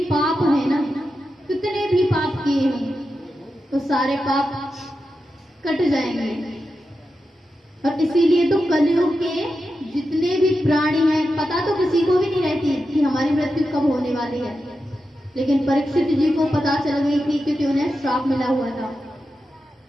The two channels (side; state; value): both; normal; correlation 0.90